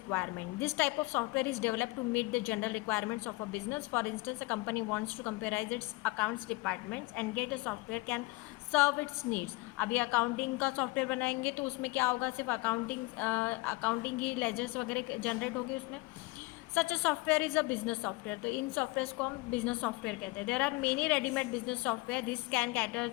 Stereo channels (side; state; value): right; quieter; 23.4 dB